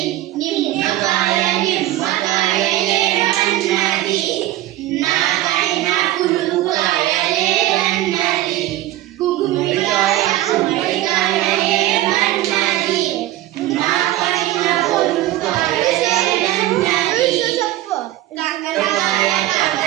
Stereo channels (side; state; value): left; quieter; 15.0 dB